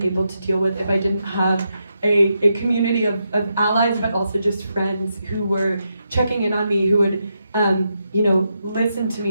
able to deal with if I didn't have a community of allies, but also just friends who were checking in on me, who would listen to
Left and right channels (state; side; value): inverted; both; correlation -0.84